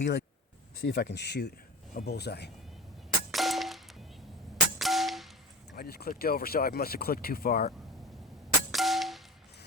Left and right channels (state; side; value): normal; both; correlation 0.33